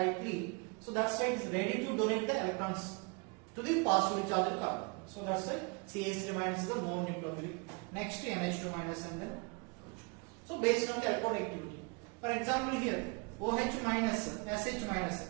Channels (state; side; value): quieter; left; 31.4 dB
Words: So that's why it is ready to donate the electrons to the positively charged carbon. So that's why CH3 minus is the more nucleophilic. Next NH2 minus and then. So based on the electronegativity. For example here OH minus, SH minus,